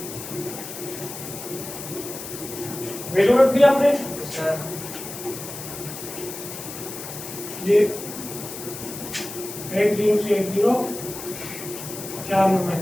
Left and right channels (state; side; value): noise; left; hiss, 10 dB below the sound